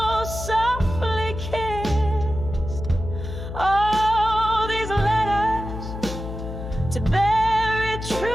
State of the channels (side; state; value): left; noise; hum, 8 dB below the sound